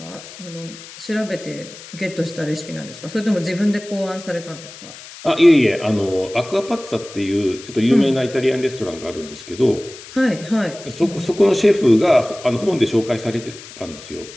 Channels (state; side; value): noise; left; hiss, 16 dB below the sound